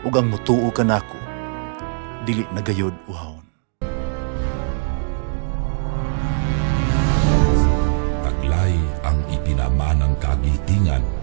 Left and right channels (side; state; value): left; silent; digital silence